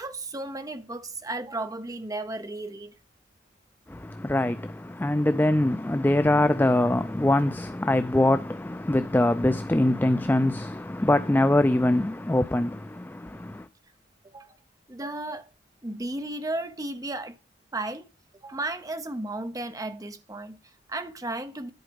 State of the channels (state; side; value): normal; both; correlation 0.88